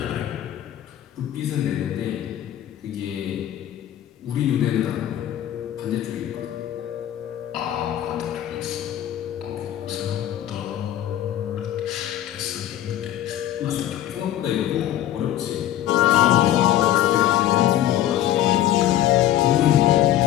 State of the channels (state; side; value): quieter; right; 12.5 dB